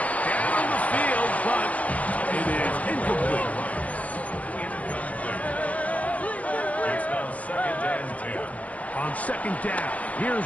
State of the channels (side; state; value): right; late; 0.068 ms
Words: down the field, but it is incomplete. It's now 2nd and 10. On 2nd down,